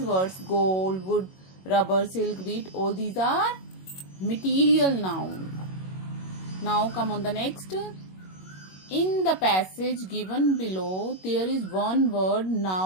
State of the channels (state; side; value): late; right; 21 ms